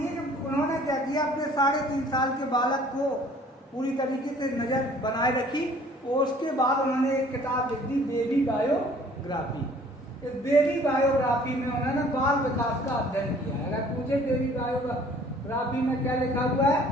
कि उन्होंने क्या किया, अपने 3.5 साल के बालक को पूरी तरीके से नजर बनाए रखी और उसके बाद उन्होंने एक किताब लिख दी, बेबी बायोग्राफी। इस बेबी बायोग्राफी में उन्होंने बाल विकास का अध्ययन किया है। अगर पूछे बेबी बायोग्राफी में क्या लिखा हुआ है,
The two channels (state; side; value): normal; both; correlation 0.54